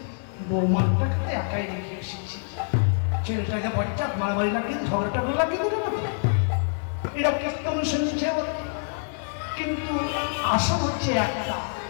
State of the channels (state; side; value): silent; right; 61 dB below the other